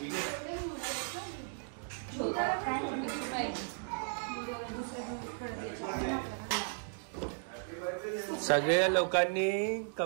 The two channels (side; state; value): left; silent; digital silence